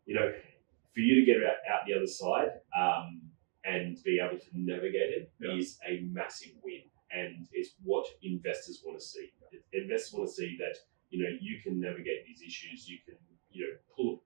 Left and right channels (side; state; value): left; silent; 53 dB below the other